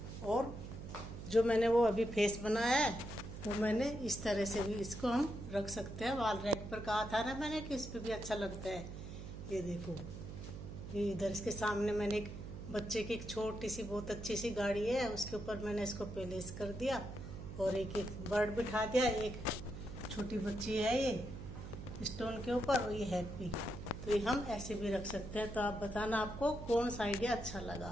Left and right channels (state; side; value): noise; right; hum, 9 dB below the sound